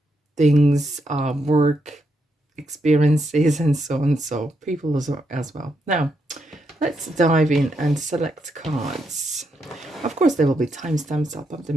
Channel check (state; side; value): normal; both; correlation 0.80